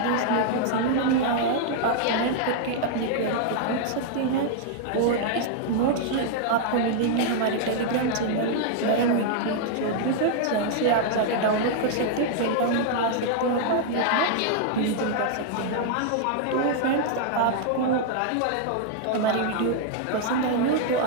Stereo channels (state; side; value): different; both; correlation -0.01